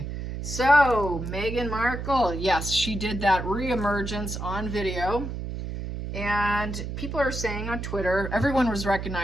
So, Meghan Markle, yes, she did that reemergence on video. And people are saying on Twitter, everyone was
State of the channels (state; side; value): noise; right; hum, 6 dB below the sound